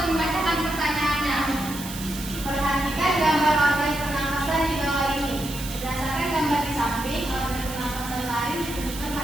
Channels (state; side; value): noise; right; hiss, 11 dB below the sound